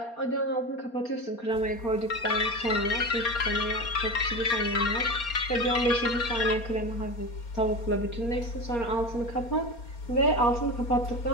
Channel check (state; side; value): late; right; 4.3 ms